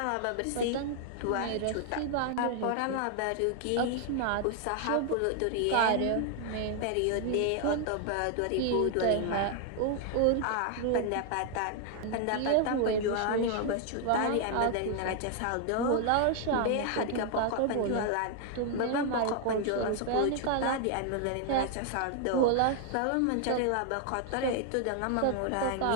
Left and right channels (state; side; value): different; both; correlation 0.00